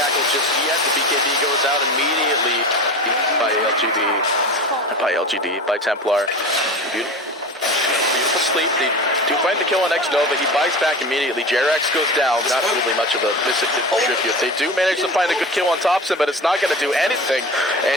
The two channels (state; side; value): normal; both; correlation 0.31